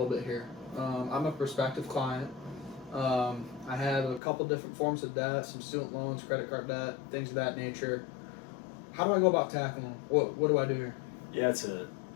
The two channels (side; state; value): right; drops out; at 4.2 s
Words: bit here. I'm a prospective client. I have a couple different forms of debt, some student loans, credit card debt, things of that nature. How do I go about tackling them? What do I do here? Yeah,